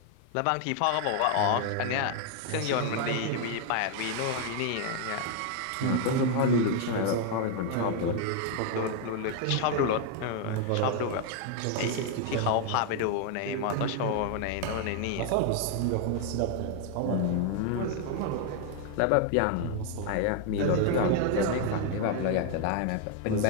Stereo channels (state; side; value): different; both; correlation 0.00